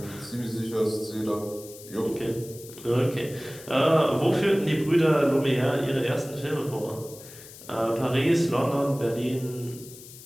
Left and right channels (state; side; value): noise; left; hiss, 17 dB below the sound